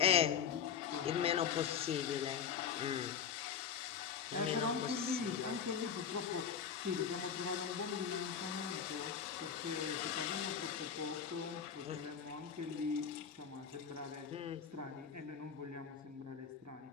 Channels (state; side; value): quieter; right; 7.4 dB